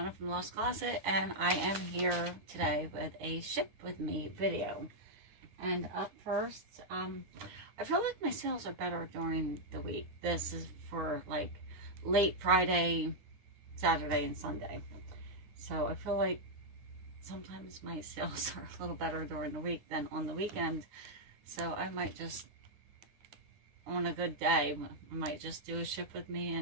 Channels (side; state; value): left; late; 9.8 ms